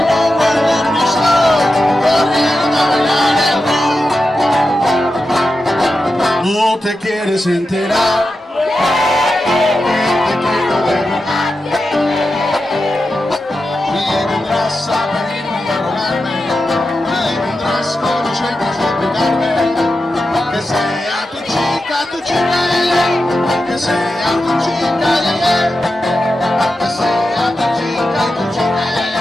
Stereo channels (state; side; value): normal; both; correlation 0.90